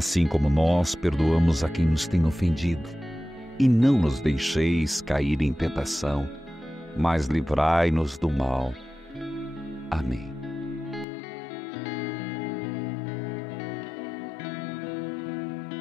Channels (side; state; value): right; drops out; at 11.1 s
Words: como nós perdoamos a quem nos tem ofendido. E não nos deixeis cair em tentação, mas livrai-nos do mal. Amém.